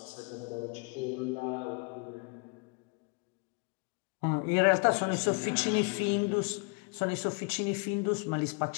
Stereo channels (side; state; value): right; quieter; 32.4 dB